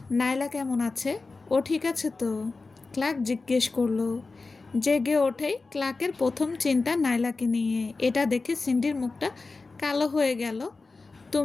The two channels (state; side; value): quieter; right; 3.9 dB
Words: নাইলা কেমন আছে? ও ঠিক আছে তো? ক্লার্ক জিজ্ঞেস করলো। জেগে ওঠেই ক্লার্কের প্রথম চিন্তা নাইলাকে নিয়ে। এটা দেখে সিন্ডির মুখটা কালো হয়ে গেল।